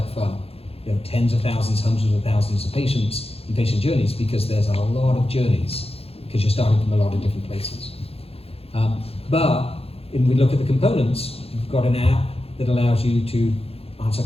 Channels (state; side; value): late; right; 0.28 ms